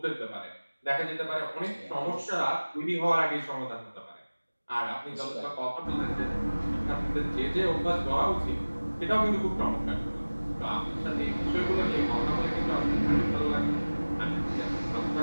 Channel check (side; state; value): both; inverted; correlation -1.00